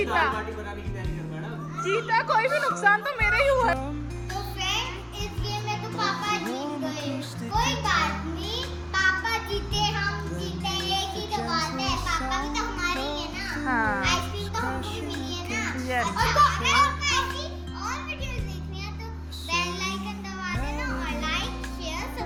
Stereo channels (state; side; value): identical; both; correlation 1.00